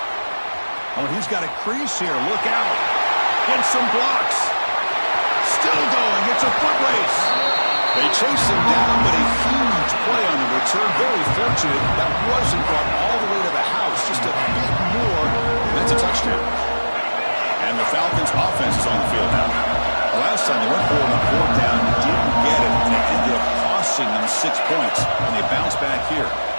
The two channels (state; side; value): inverted; both; correlation -1.00